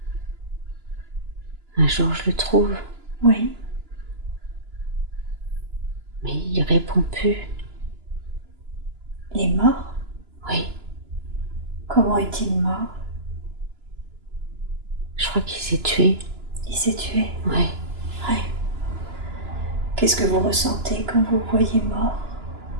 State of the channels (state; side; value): late; left; 2.9 ms